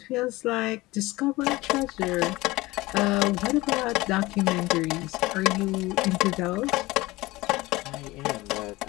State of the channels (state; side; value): quieter; right; 20.1 dB